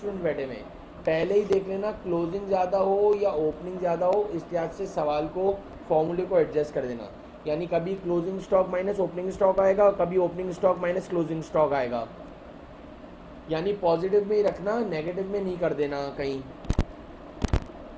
बैठे हुए पहले ही देख लेना, क्लोजिंग ज़्यादा हो या ओपनिंग ज़्यादा हो इस लिहाज से सवाल को फॉर्मूले को एडजस्ट कर देना। यानी कभी closing stock minus opening stock आएगा, कभी opening stock minus closing stock आएगा। यानी पॉजिटिव में ही रखना, नेगेटिव में नहीं कर देना कहीं।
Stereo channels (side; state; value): both; identical; correlation 1.00